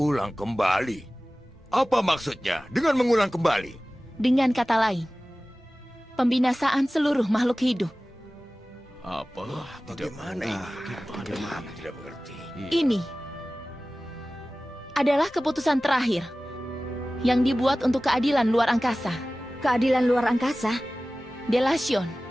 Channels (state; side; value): normal; both; correlation 0.97